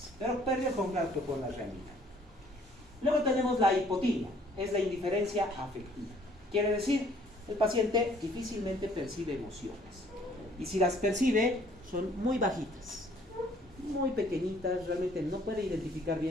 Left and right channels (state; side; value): normal; both; correlation 0.59